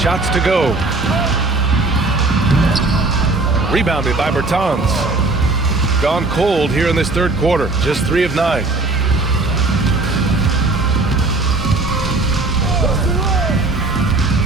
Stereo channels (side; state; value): left; quieter; 3.3 dB